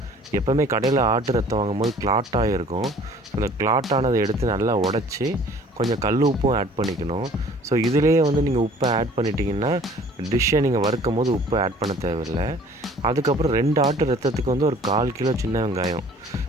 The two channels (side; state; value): both; normal; correlation 0.52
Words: எப்போவுமே கடையில் ஆட்டு ரத்தம் வாங்கும்போது கிளாட்டாக இருக்கும். ஸோ அந்த கிளாட்டானதை எடுத்து நல்லா உடச்சி கொஞ்சம் கல் உப்பும் ஆட் பண்ணிக்கணும். ஸோ இதிலேயே வந்து நீங்கள் உப்பை ஆட் பண்ணிட்டீங்கன்னா டிஷ்ஷை நீங்கள் வறுக்கும் போது உப்பு ஆட் பண்ண தேவையில்லை. அதுக்கப்புறம் 2 ஆட்டு ரத்தத்துக்கு வந்து ஒரு 1/4 கிலோ சின்ன வெங்காயம்